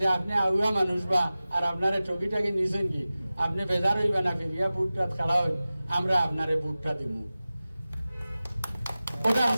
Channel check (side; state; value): both; inverted; correlation -0.96